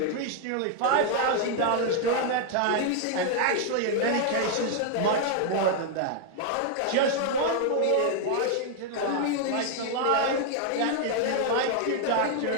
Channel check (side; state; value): both; different; correlation 0.00